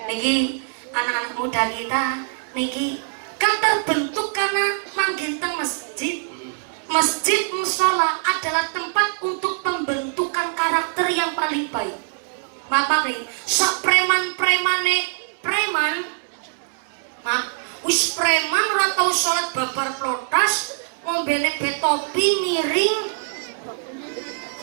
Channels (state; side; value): silent; left; 64 dB below the other